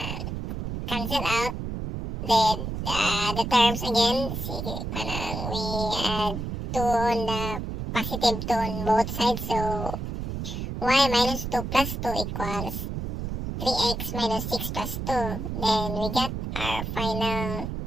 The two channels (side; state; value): right; noise; rumble, 5 dB below the sound